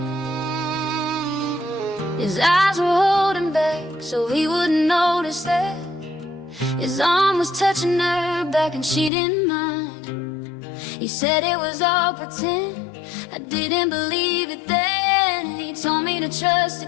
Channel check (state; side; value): drops out; right; at 9.1 s